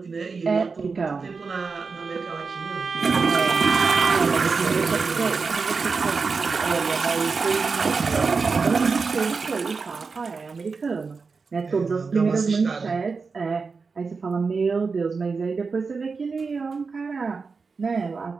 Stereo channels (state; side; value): quieter; left; 4.7 dB